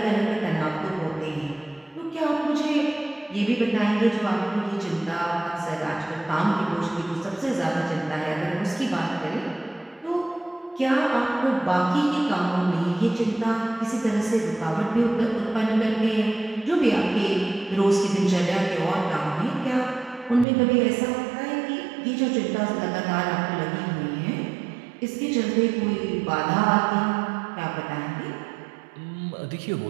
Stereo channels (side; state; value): left; drops out; at 20.5 s